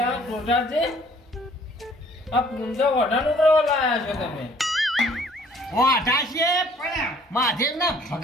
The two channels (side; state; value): both; normal; correlation 0.58